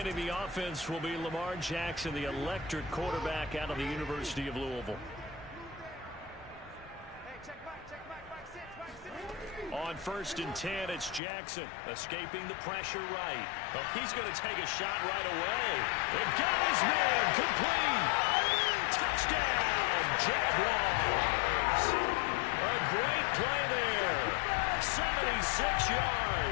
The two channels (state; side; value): drops out; right; at 11.2 s